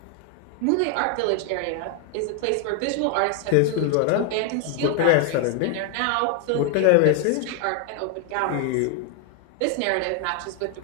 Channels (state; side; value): different; both; correlation 0.00